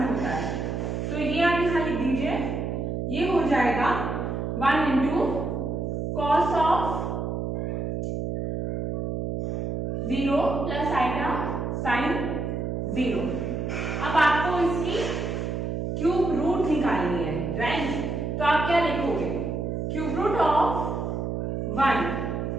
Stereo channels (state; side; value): noise; right; hum, 2 dB below the sound